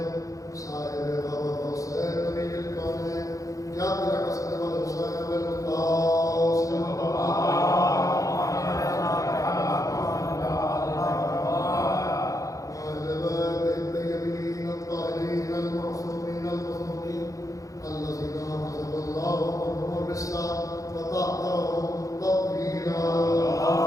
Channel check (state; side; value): late; right; 0.16 ms